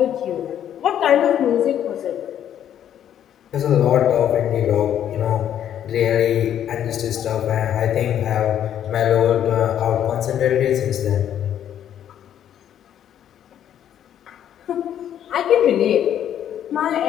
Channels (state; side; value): quieter; right; 10.2 dB